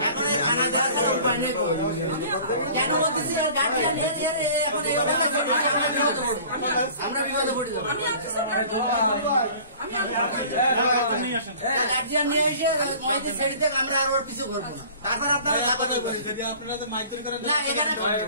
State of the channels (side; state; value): both; inverted; correlation -0.46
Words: এখন কেন বলতেছি গার্জিয়ান এখন আমরা বিপদে পড়ে যাবো, গার্জিয়ান নিয়ে এসে মহিলা ছেড়ে দেখ, আমরা আর ওর পিছু করবো না, তারপর আপনারা